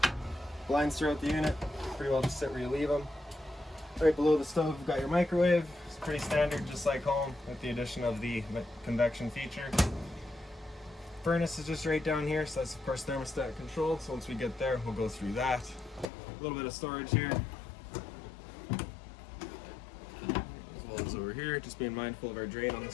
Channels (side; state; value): right; drops out; at 16.1 s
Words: Blinds throughout the unit, pretty well just sit where you leave them. Right below the stove, we've got your microwave. It's pretty standard, just like home, with the addition of the convection feature. Furnace is just right down here, so that's of course thermostat controlled. So once we get there, we'll go through that. A little bit of storage here. As well as over here, just being mindful of our drain on the